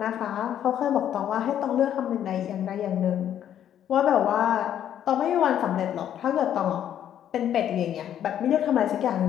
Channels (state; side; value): quieter; right; 10.3 dB